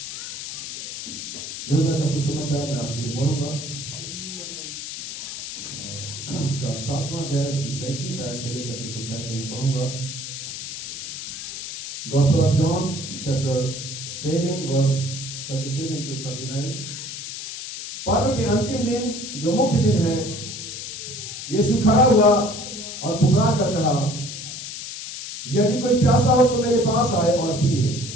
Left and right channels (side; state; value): left; noise; hiss, 8 dB below the sound